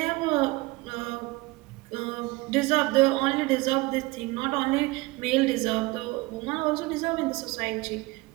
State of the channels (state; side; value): quieter; left; 22.4 dB